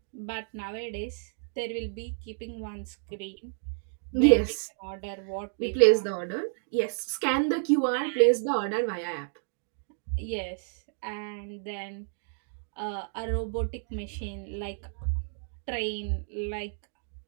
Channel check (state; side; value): silent; left; digital silence